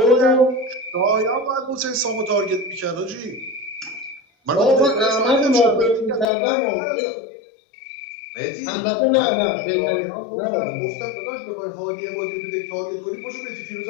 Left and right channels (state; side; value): drops out; right; at 6.2 s